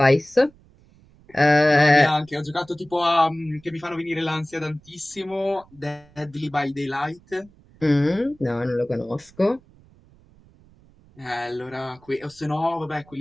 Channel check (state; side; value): noise; right; rumble, 28 dB below the sound